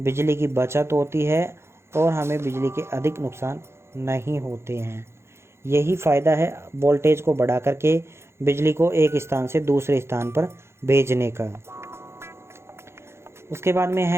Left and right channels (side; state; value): left; late; 0.13 ms